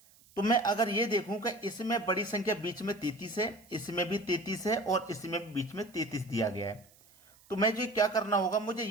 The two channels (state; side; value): noise; right; hiss, 28 dB below the sound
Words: तो मैं अगर ये देखूं कि इसमें बड़ी संख्या बीच में 33 है, इसमें भी 33 है और इसमें भी बीच में 33 दिया गया है, तो मैं जो क्या करना होगा, मुझे